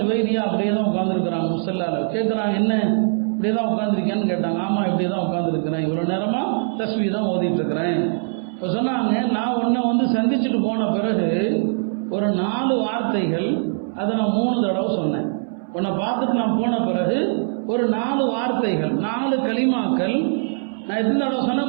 அப்படியே தான் உட்காந்துருக்குறாங்க. முஸல்லால கேட்குறாங்க, என்ன இப்படியே தான் உட்காந்துருக்கேன்னு கேட்டாங்க. ஆமாம் இப்படியே தான் உட்காந்துருக்கிறேன், இவ்வளோ நேரமாக தஸ்பீஹ் தான் ஓதிட்டு இருக்கிறேன். இப்போ சொன்னாங்க, நான் உன்னை வந்து சந்திச்சுட்டு போன பிறகு ஒரு 4 வார்த்தைகள் அதை நான் 3 தடவை சொன்னேன். உன்னை பார்த்துட்டு நான் போன பிறகு ஒரு 4 வார்த்தைகள் 4 கலிமாக்கள் நான் எத்தனை தடவை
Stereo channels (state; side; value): silent; left; 64 dB below the other